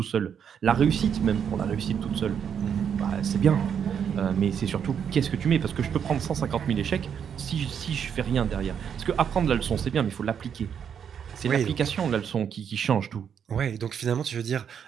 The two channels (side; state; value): left; quieter; 7.9 dB